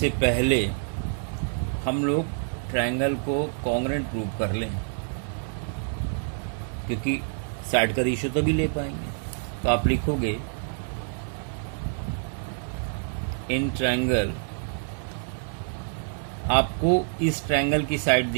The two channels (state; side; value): silent; left; 60 dB below the other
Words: पहले हम लोग ट्रायंगल को कॉन्ग्रुएंट प्रूव कर लें, क्योंकि साइड का रेशियो तो भी ले पाएंगे। तो आप लिखोगे इन ट्रायंगल, आपको इस ट्रायंगल की साइड